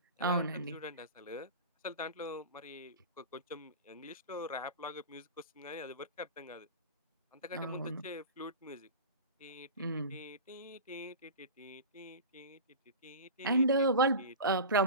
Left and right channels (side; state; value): both; inverted; correlation -0.30